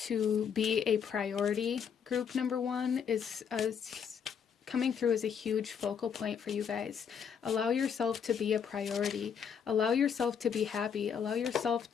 be a priority. Group number 1 is coming through as a huge focal point for you guys. Allow yourself to be a priority. Allow yourself to be happy. Allow yourself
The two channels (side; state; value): right; quieter; 7.2 dB